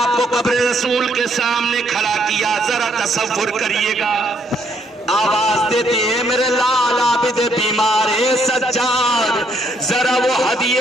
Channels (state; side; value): normal; both; correlation 0.70